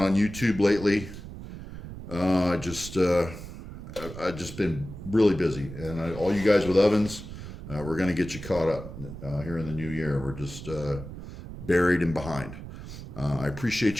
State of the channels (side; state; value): right; noise; rumble, 11 dB below the sound